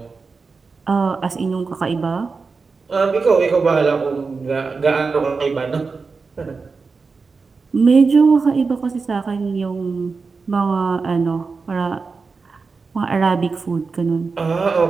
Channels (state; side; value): quieter; left; 4.6 dB